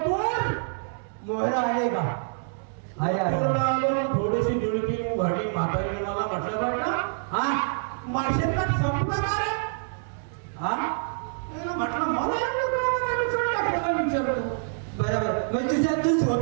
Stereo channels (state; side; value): silent; left; digital silence